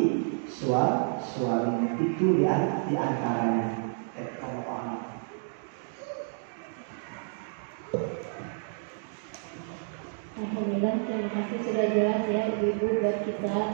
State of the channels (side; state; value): left; silent; digital silence